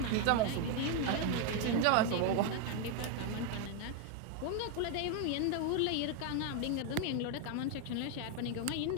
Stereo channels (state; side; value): different; both; correlation 0.01